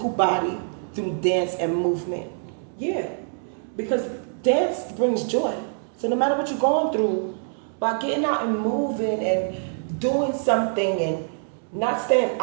body through dance and movement. Yeah, because dance brings joy. So no matter what you're going through, by getting out and moving and doing something and not staying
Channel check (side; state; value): left; silent; 62 dB below the other